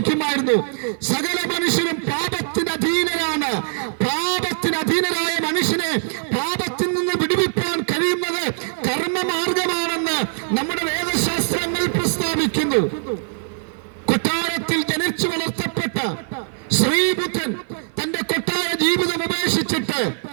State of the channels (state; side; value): silent; left; 57 dB below the other